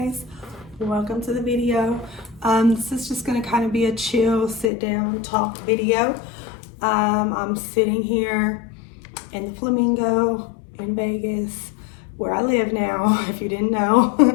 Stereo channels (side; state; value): right; drops out; at 4.7 s